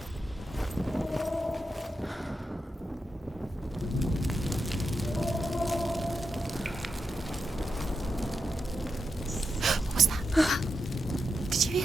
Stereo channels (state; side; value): normal; both; correlation 0.87